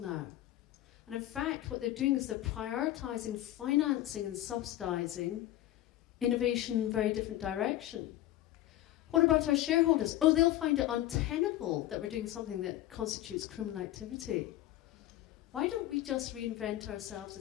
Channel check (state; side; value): quieter; right; 14.4 dB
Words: And in fact, what they're doing is they're prioritising financing and subsidising innovation in a very different direction. What about our shareholders? Oh, they'll find it untenable that we're doing something that constitutes criminal activity. Why don't we just reinvent ourselves